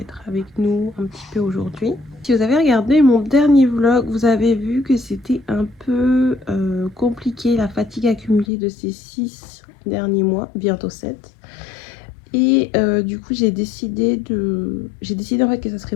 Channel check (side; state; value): right; drops out; at 8.5 s